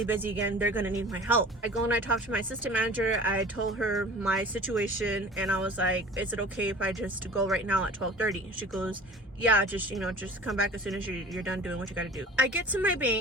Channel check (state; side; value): normal; both; correlation 0.42